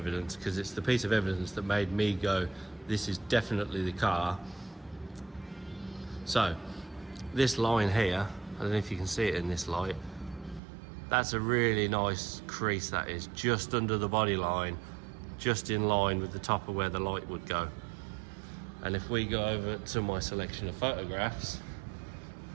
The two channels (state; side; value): drops out; left; at 10.6 s